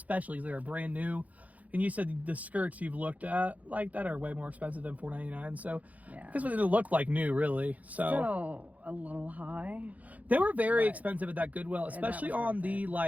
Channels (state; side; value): late; left; 0.073 ms